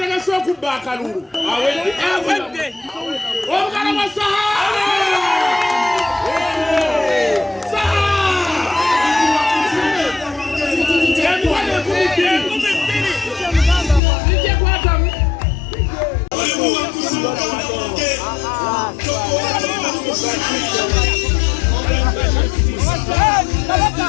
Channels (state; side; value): drops out; right; at 14.0 s